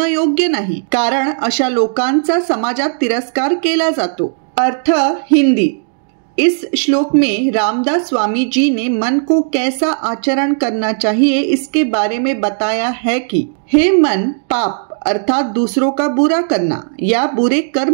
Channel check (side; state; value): left; silent; digital silence